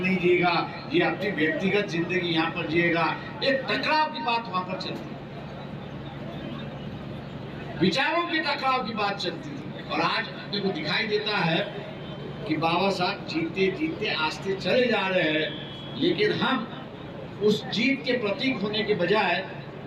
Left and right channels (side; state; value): both; identical; correlation 1.00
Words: जिएगा, ये अपनी व्यक्तिगत जिंदगी यहाँ पर जिएगा। एक टकराव की बात वहां पर चलती, विचारों के टकराव की बात चलती थी। और आज अपने को दिखाई देता है कि बाबा साहब जीतते जीतते आस्ते चले जा रहे हैं, लेकिन हम उस जीत के प्रतीक होने के